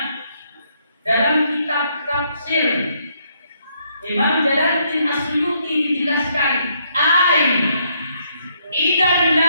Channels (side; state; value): both; inverted; correlation -0.72